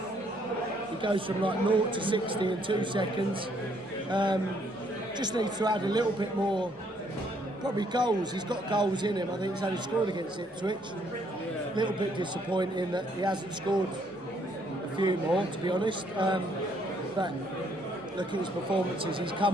He goes from like 0 to 60 in 2 seconds. Just needs to add a little bit more, probably goals. He's got goals in him. I think he's only scored against Ipswich. little bit disappointing that he hasn't scored a few more, to be honest. But look at his performances, he's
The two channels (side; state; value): both; normal; correlation 0.68